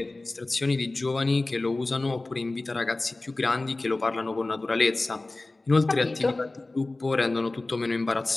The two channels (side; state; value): right; quieter; 3.0 dB